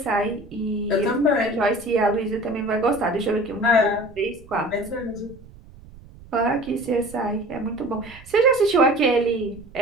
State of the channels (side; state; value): right; noise; rumble, 20 dB below the sound